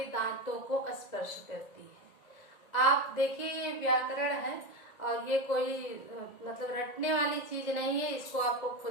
दांतों को स्पर्श करती है। आप देखिए ये व्याकरण है और ये कोई मतलब रटने वाली चीज नहीं है, इसको आपको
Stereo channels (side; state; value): right; late; 2.0 ms